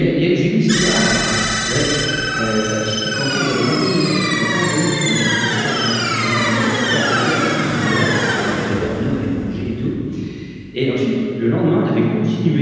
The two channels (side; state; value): both; identical; correlation 1.00